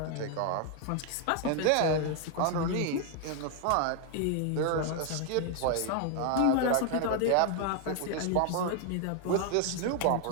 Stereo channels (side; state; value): both; different; correlation 0.00